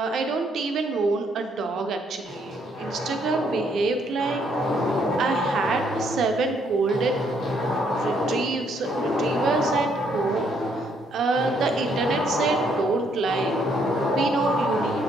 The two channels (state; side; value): normal; both; correlation 0.70